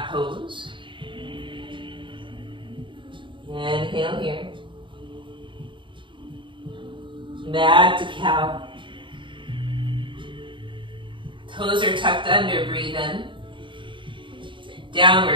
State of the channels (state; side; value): late; left; 0.24 ms